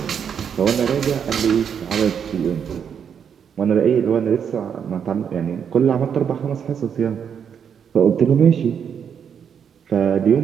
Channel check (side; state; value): left; quieter; 7.6 dB